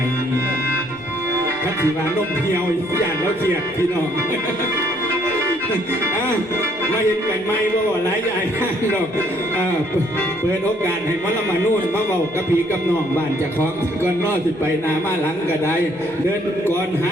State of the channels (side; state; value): both; normal; correlation 0.65